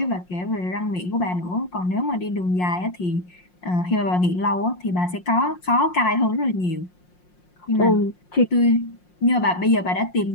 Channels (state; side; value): late; right; 5.6 ms